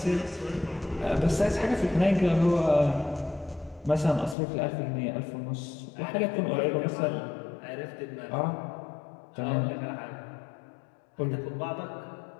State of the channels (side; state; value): right; drops out; at 4.4 s